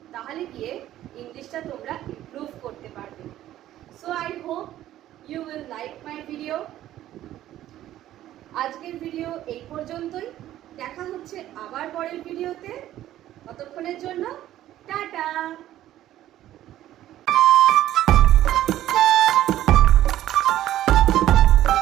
তাহলে গিয়ে ইংলিশটা তোমরা ইমপ্রুভ করতে পারবে। So I hope you will like my video. আজকের ভিডিও এই পর্যন্তই, দেখা হচ্ছে আবার পরের ভিডিওতে। ততক্ষণের জন্য টাটা।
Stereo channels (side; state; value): left; quieter; 13.3 dB